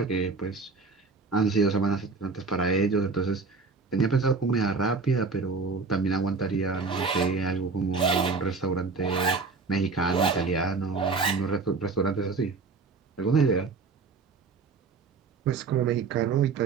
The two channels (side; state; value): left; quieter; 4.4 dB